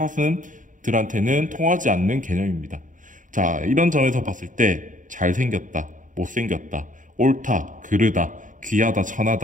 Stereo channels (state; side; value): late; left; 0.38 ms